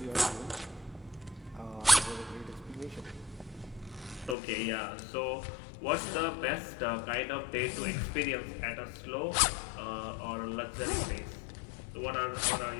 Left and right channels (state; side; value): drops out; right; at 4.4 s